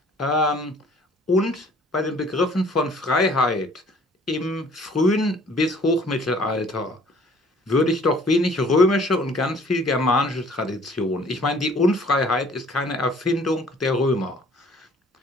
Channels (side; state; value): both; normal; correlation 0.55